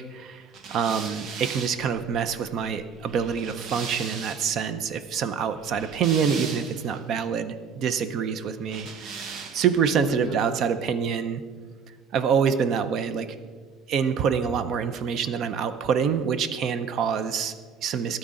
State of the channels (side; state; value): left; quieter; 6.5 dB